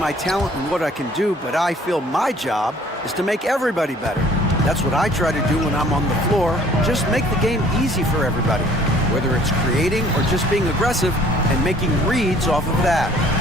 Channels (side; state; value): both; normal; correlation 0.56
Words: talent and what I can do, but I feel my job is to make everybody better. That's what I try to do when I'm on the floor. Just make the game easy for everybody, whether it's creating or just being aggressive and making reads off of that.